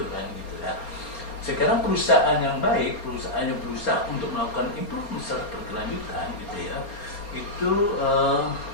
kan gitu ya. Sekarang perusahaan yang baik, perusahaan yang berusaha untuk melakukan improvement secara berkelanjutan gitu ya, itu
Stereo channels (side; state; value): right; late; 4.3 ms